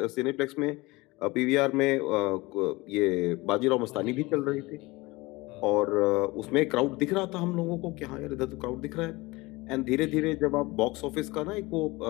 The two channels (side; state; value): right; quieter; 22.2 dB